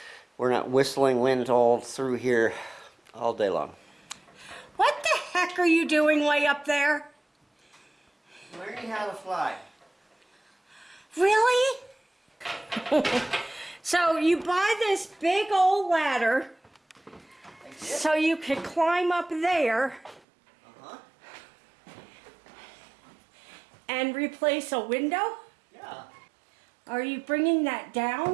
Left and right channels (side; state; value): left; drops out; at 20.2 s